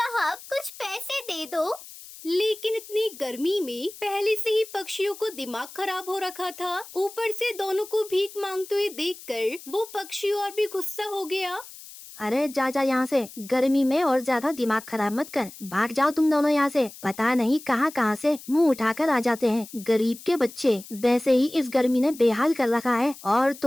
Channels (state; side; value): noise; left; hiss, 17 dB below the sound